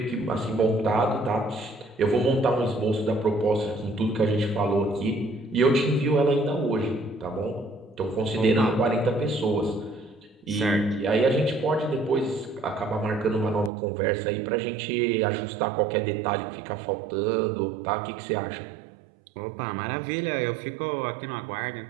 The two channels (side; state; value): left; drops out; at 13.7 s